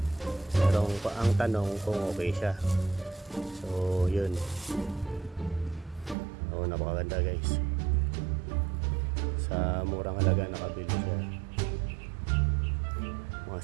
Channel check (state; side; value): drops out; left; at 6.2 s